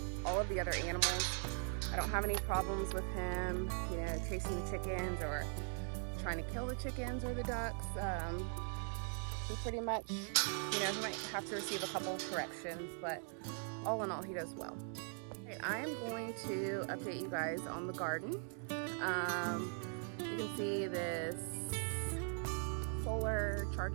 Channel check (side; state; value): left; silent; 50 dB below the other